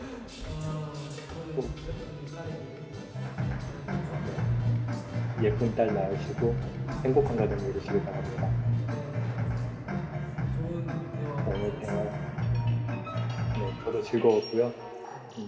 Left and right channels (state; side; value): identical; both; correlation 1.00